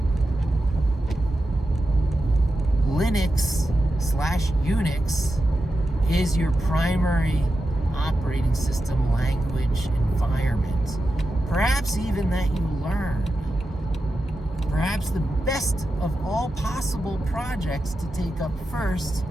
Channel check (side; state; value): both; normal; correlation 0.90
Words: Linux/Unix is your primary operating system language environment. Perhaps even that you learn. Perhaps the best of all possible projects to take up first